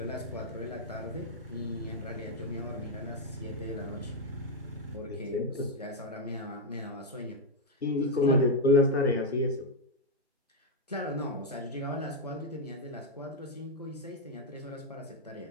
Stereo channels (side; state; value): both; normal; correlation 0.01